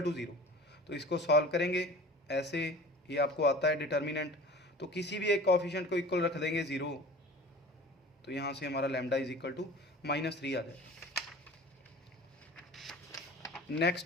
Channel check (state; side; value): normal; both; correlation 0.41